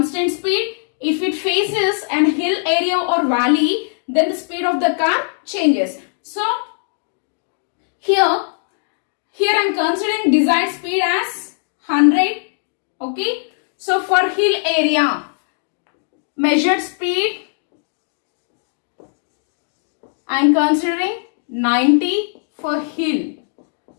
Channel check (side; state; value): right; silent; digital silence